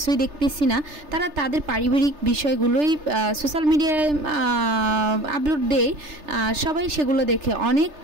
দেখতেছি না। তারা তাদের পারিবারিক বিষয়গুলোই সোশ্যাল মিডিয়ায় আপলোড দেয়, সবাই সেগুলো দেখে। অনেক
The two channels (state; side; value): late; left; 3.3 ms